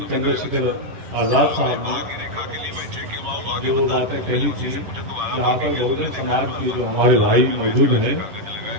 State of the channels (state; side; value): late; left; 10 ms